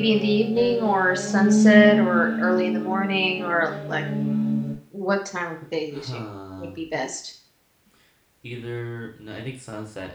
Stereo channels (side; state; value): both; identical; correlation 1.00